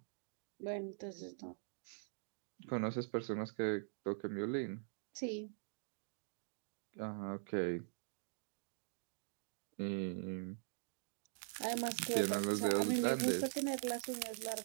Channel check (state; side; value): silent; left; digital silence